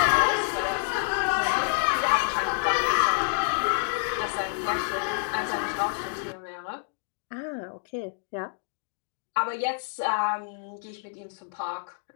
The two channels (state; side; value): silent; right; digital silence